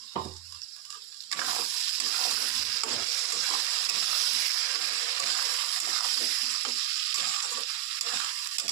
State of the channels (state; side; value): quieter; left; 14.0 dB